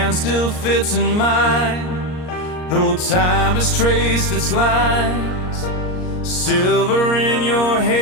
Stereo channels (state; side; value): late; right; 38 ms